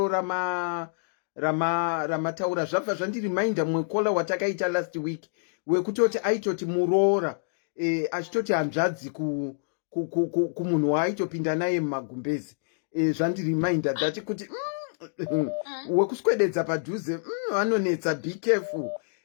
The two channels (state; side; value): silent; right; digital silence